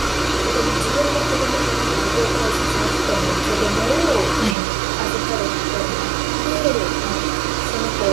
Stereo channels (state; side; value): drops out; left; at 4.5 s